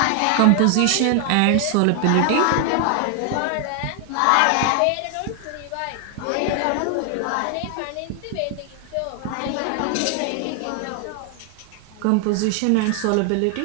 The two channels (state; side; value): different; both; correlation 0.00